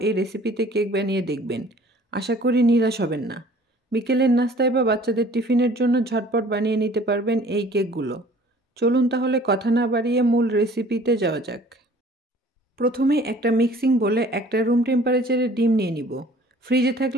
এই রেসিপিতে কেক বানিয়ে দেখবেন। আশা করি নিরাশ হবেন না। বিকেলের নাস্তায় বা বাচ্চাদের টিফিনের জন্য ঝটপট বানিয়ে নিতে পারবেন এই কেকগুলো। চলুন তাহলে কথা না বাড়িয়ে মূল রেসিপিতে যাওয়া যাক। প্রথমে একটা মিক্সিং বলে একটা রুম টেম্পারেচারে ডিম নিয়ে নিব। ফ্রিজে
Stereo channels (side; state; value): both; normal; correlation 0.52